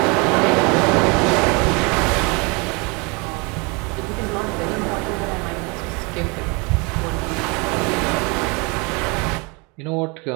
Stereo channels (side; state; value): left; quieter; 29.3 dB